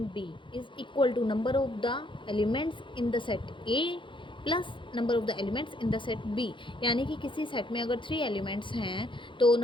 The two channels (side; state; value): right; late; 0.24 ms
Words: B is equal to number of the elements in the set A plus number of the elements in the set B. यानी कि किसी सेट में अगर 3 एलिमेंट्स हैं तो